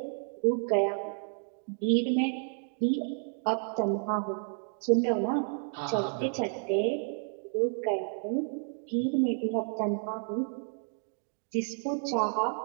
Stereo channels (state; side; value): silent; left; 57 dB below the other